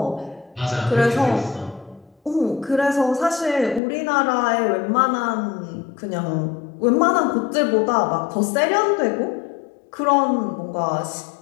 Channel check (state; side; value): drops out; right; at 3.8 s